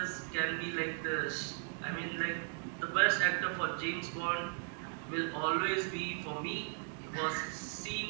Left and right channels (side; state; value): left; silent; 53 dB below the other